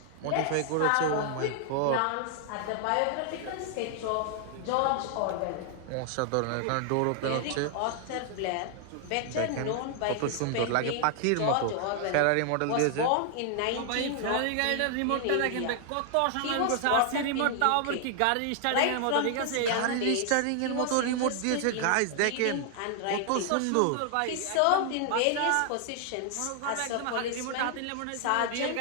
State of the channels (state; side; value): different; both; correlation 0.00